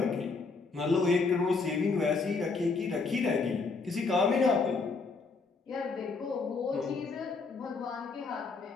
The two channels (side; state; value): right; quieter; 4.3 dB